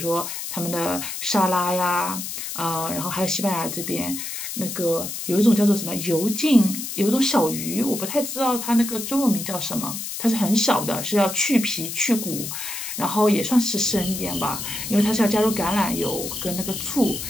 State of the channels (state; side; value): noise; left; hiss, 6 dB below the sound